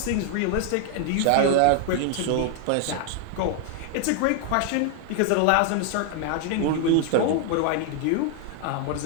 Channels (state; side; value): different; both; correlation 0.00